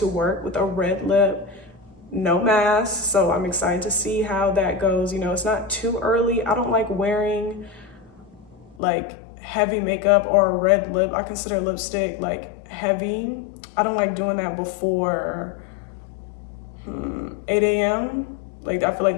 work with a red lip, no mask. So I'm excited to see how that goes. You know, it's not too early. I don't like wearing like heavy makeup or a red lip. I consider lipstick like heavy. I don't like doing that before 8 a.m. Like, I feel like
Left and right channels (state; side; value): drops out; right; at 8.8 s